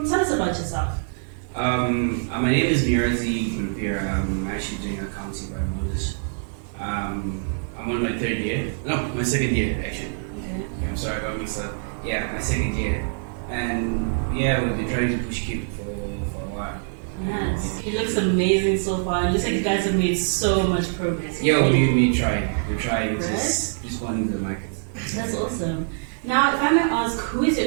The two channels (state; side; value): silent; left; 56 dB below the other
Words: tell us about yourself. My name is Munyaradzi Gurupira. I'm actually doing accounting by Moses. I'm on my third year. No, my second year actually. Okay, I'm sorry about mixed up. Yeah, my second year. And yeah, we've been trying to push Cupid for a while. Nice. It looks amazing so far. It looks like you guys have made so much progress. Yeah, we try. We're trying right? just responding to the market. That's awesome. Now, if I may ask, who is